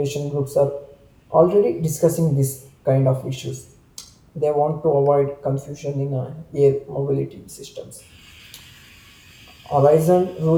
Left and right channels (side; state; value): both; identical; correlation 1.00